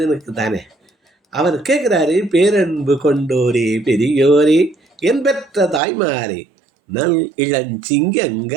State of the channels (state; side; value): drops out; left; at 5.8 s